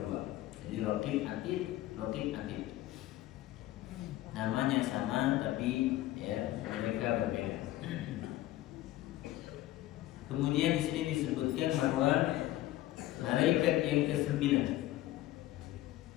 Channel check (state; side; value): quieter; right; 15.2 dB